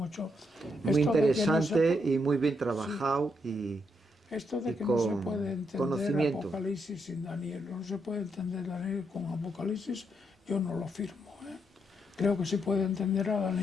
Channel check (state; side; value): normal; both; correlation 0.78